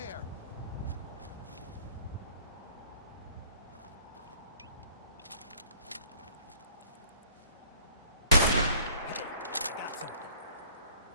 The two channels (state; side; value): inverted; both; correlation -0.55